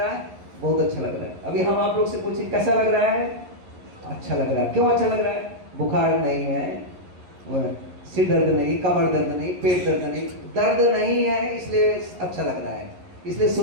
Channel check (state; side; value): late; left; 11 ms